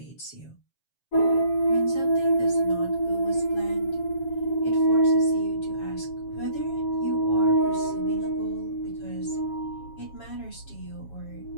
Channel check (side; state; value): right; late; 7.2 ms